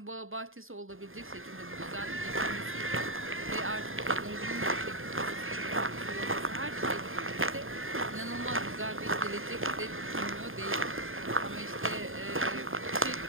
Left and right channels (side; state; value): left; late; 0.59 ms